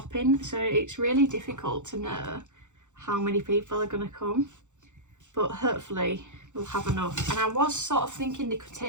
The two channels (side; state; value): left; late; 0.85 ms